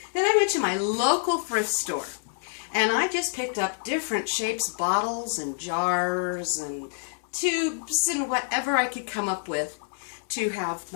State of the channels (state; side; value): silent; right; 59 dB below the other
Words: Then I went to my local thrift store, and I just picked up different shapes, bottles and jars and tubes and whatever I could come up with to have